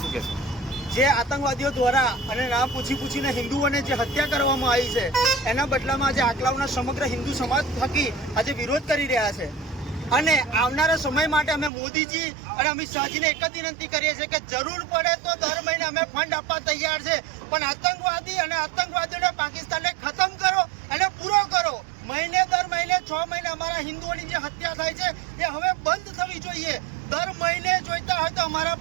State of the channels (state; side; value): drops out; left; at 11.7 s